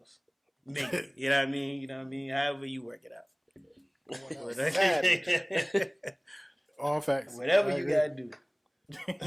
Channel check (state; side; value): identical; both; correlation 1.00